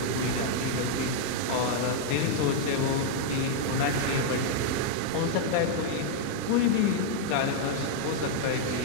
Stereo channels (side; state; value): both; different; correlation -0.01